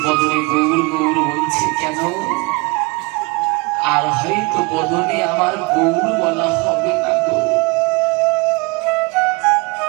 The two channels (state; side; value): quieter; left; 26.9 dB